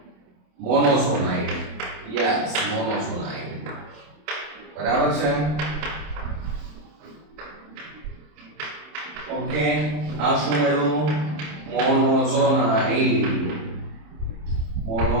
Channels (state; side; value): late; left; 27 ms